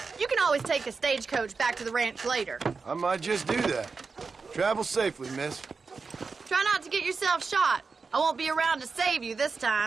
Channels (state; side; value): quieter; left; 4.6 dB